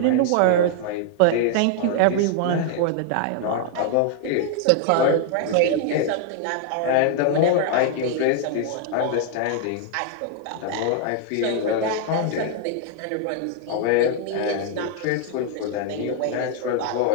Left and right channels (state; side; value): different; both; correlation -0.01